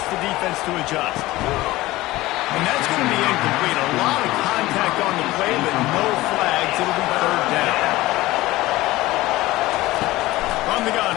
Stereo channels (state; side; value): quieter; right; 18.2 dB